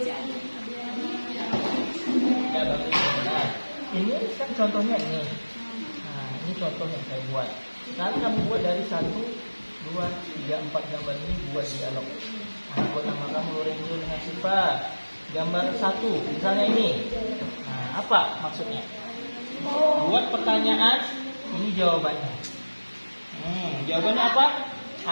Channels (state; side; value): inverted; both; correlation -1.00